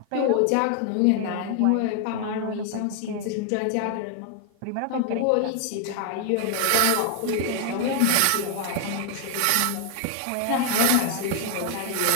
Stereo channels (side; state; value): both; different; correlation 0.00